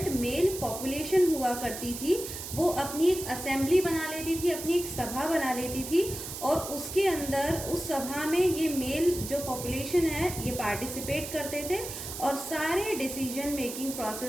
मेल पॉपुलेशन हुआ करती थी वो अपनी एक असेंबली बना लेती थी, अपनी एक सभा बना लेती थी, और उसके अंदर उस सभा में ये मेल जो पॉपुलेशन है ये पार्टिसिपेट करते थे और सारे डिसीजन मेकिंग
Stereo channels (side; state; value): right; noise; hiss, 8 dB below the sound